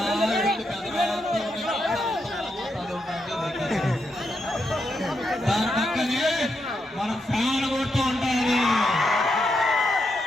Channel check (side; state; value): both; normal; correlation 0.82